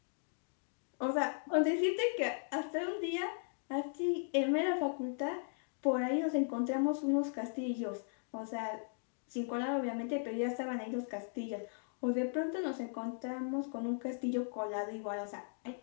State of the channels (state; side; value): silent; right; digital silence